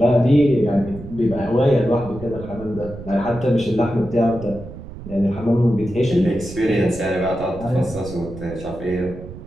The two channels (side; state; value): right; noise; rumble, 13 dB below the sound